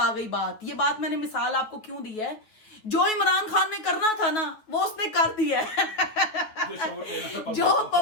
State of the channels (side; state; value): right; late; 9.3 ms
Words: गई बात। ये बात मैंने मिसाल आपको क्यों दी है, जो इमरान खान ने करना था ना, वो उसने कर दिया है। जो